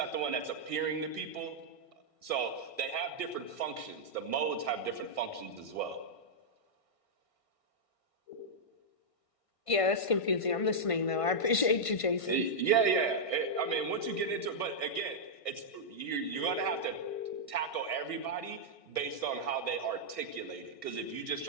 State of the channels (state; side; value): late; right; 1.5 ms